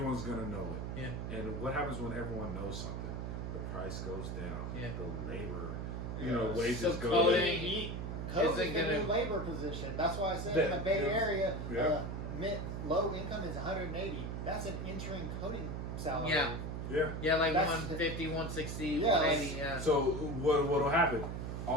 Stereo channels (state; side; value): noise; right; hum, 4 dB below the sound